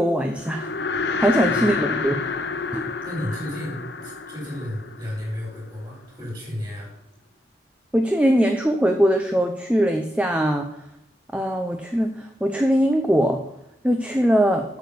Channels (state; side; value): normal; both; correlation 0.82